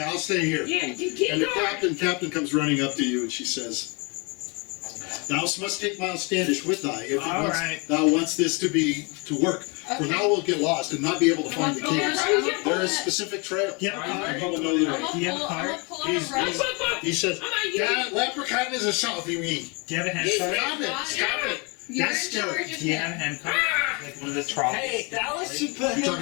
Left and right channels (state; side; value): quieter; right; 31.0 dB